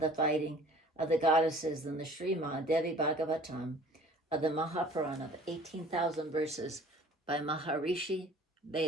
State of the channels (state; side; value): normal; both; correlation 0.49